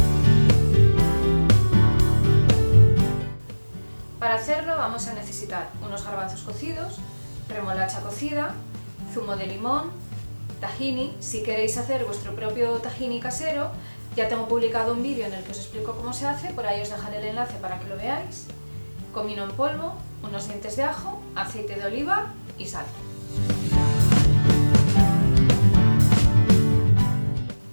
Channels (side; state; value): both; inverted; correlation -1.00